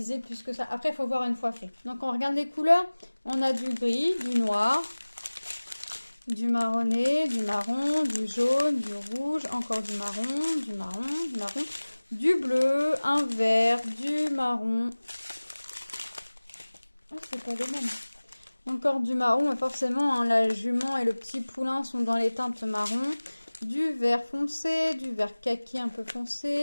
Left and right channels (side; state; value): both; inverted; correlation -1.00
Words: plus que ça. Après, il faut voir une fois fait. Donc, on regarde les couleurs. On a du gris, du noir, du marronné, du marron, du jaune, du rouge, encore du marron, du marron, du marron, du bleu, un vert, du marron. Oh, c'est pas les mêmes. Encore du marron, mais forcément, hein, la jument et le petit poulain sont dans les teintes marron. Du vert foncé, du vert kaki un peu